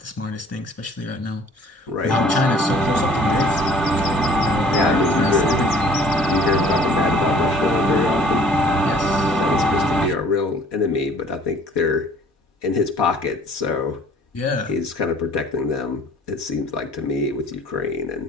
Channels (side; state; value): both; normal; correlation 0.53